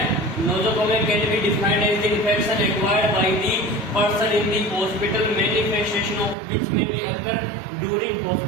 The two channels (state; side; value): drops out; left; at 6.4 s